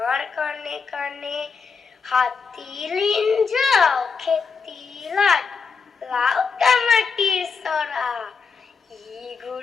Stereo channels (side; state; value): right; quieter; 5.3 dB